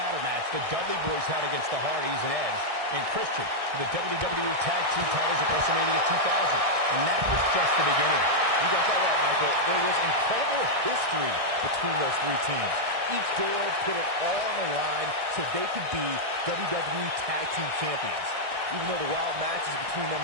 match the Dudley Boys had against the Hardys and Edge and Christian for the WWE Tag Team titles at WrestleMania 2000. And that was just the beginning. You got that right, Michael. There was incredible history between those three teams. Each duo put it all on the line so they could be WWE Tag Team Champions. Even though the wild matches between them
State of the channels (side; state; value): left; late; 1.6 ms